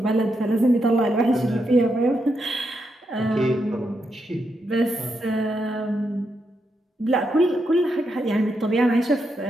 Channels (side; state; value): both; normal; correlation 0.83